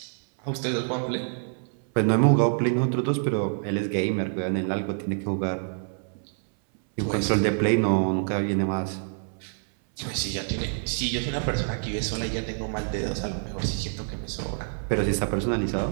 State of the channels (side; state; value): left; silent; 60 dB below the other